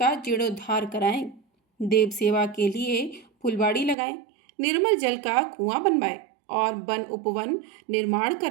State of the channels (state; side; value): drops out; left; at 4.0 s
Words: जीर्णोद्धार कराएं। देव सेवा के लिए फुलवाड़ी लगाएं। निर्मल जल का कुआं बनवाएं और वन उपवन निर्माण